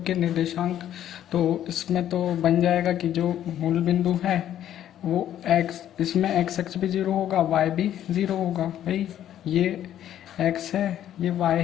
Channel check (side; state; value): right; quieter; 11.3 dB